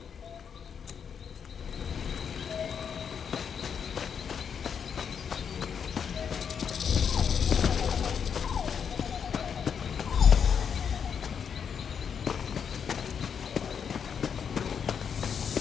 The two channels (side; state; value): right; quieter; 7.2 dB